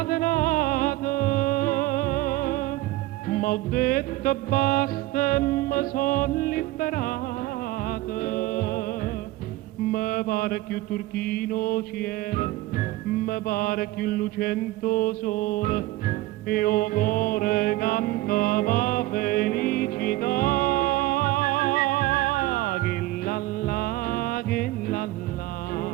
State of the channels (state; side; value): quieter; left; 17.9 dB